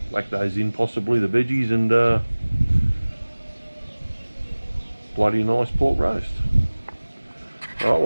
whack those in, possibly the veggies, and bloody nice pork roast. Alright,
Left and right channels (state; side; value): inverted; both; correlation -1.00